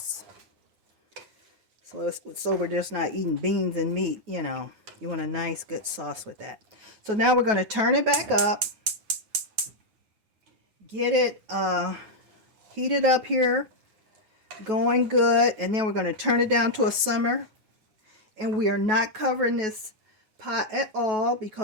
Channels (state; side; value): late; left; 9.3 ms